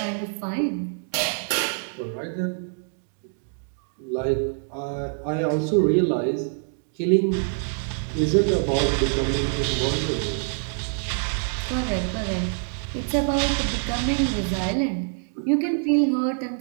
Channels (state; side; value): silent; left; 57 dB below the other